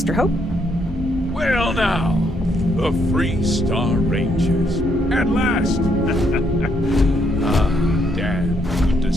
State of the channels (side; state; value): both; normal; correlation 0.73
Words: Hope? Well now, the Free Star Rangers. At last! Damn, good to